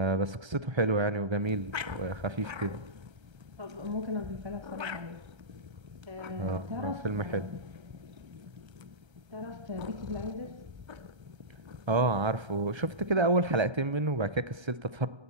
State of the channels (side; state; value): left; late; 1.3 ms